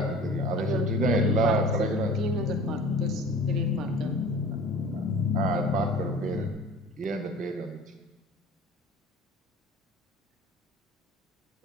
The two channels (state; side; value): normal; both; correlation 0.42